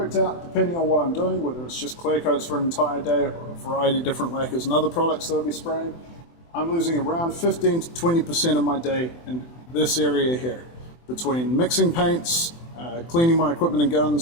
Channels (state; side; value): late; right; 24 ms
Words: out, depending on what I'm doing, whether it's just clear coats for an entire day or a variety of different lacquers and other products that I'll be spraying, I'm losing around 15 to 20% of my day in this area here, between mixing paints, cleaning my equipment and